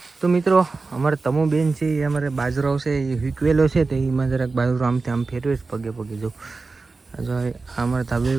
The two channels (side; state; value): left; quieter; 3.9 dB